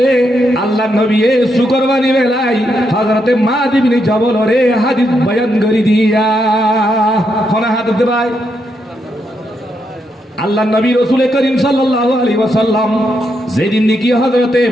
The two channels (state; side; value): normal; both; correlation 0.80